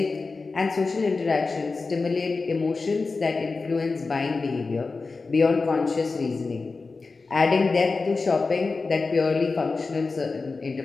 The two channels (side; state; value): right; quieter; 4.0 dB